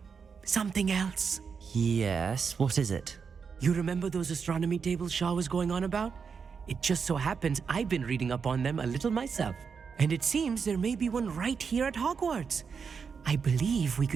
something else. Yes, what is it? You remember those astronomy tables Shaw was going on about? It just so happens I've been reading up on them a little myself. And it seems there may be one right here at Hogwarts. I believe we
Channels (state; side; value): quieter; left; 5.9 dB